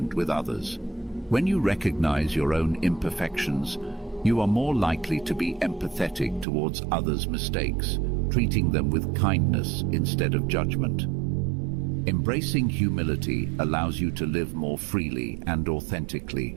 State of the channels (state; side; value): drops out; left; at 6.5 s